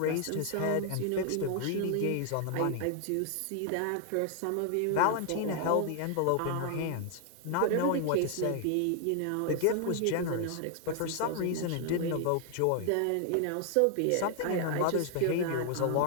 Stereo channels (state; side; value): different; both; correlation 0.00